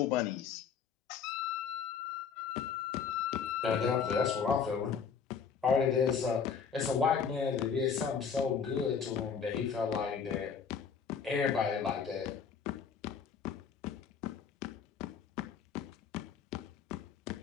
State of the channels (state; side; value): quieter; right; 6.6 dB